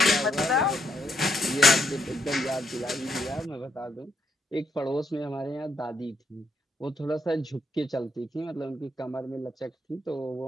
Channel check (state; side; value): normal; both; correlation 0.76